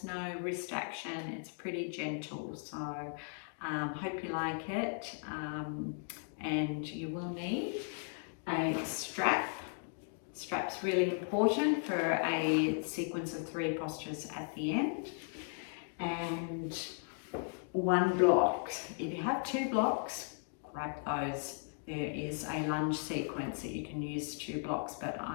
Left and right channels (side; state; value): right; silent; 53 dB below the other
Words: no wrist action. It's pretty gentle, so hope you like it. And you will need a strap. Strap's really important for a sequence of 3 postures at the end. And 1 block. If you have 2 blocks, grab those. There is a lunge sequence that you can use 2 blocks, but